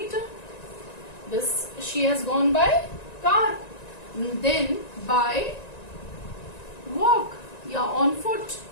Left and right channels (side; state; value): right; late; 1.9 ms